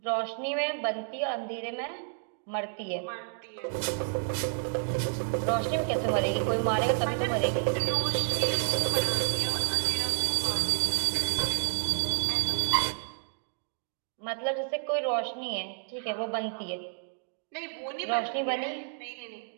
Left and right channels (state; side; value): silent; left; digital silence